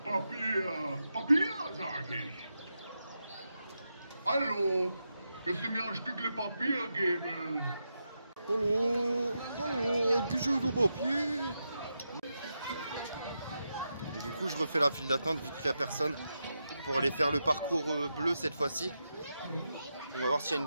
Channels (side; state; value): both; inverted; correlation -0.87